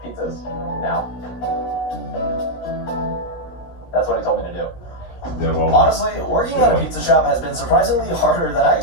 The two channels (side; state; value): right; late; 16 ms